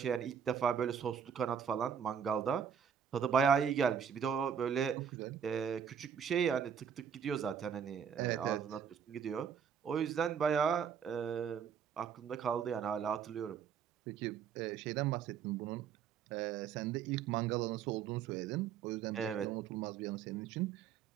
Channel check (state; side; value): quieter; left; 7.5 dB